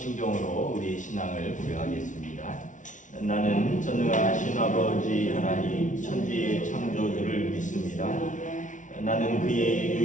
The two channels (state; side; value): late; right; 0.37 ms